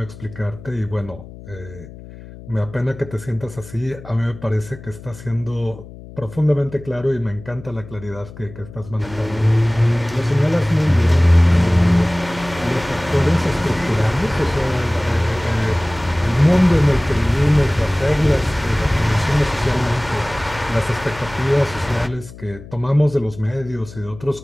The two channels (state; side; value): noise; left; hum, 17 dB below the sound